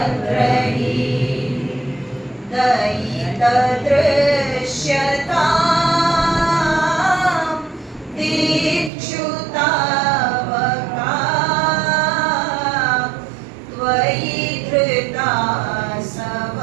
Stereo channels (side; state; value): left; drops out; at 8.9 s